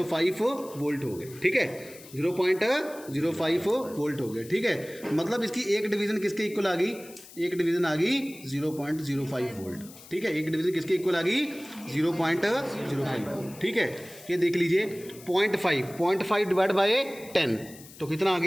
वोल्ट हो गए। ठीक है, 0.05 वोल्ट हो गए। ठीक है, मतलब इसकी एक डिवीज़न किसके इक्वल आ गई, एक डिवीज़न आ गई 0.05 वोल्ट। ठीक है, एक डिवीज़न किसके इक्वल आ गई, 0.05 वोल्ट। ठीक है, ये देख लीजिए 0.5 डिवाइड बाय 10, तो कितना आ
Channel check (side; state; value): left; noise; hiss, 19 dB below the sound